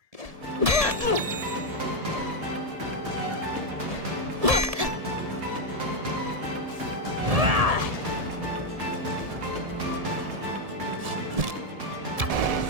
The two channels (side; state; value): left; late; 1.7 ms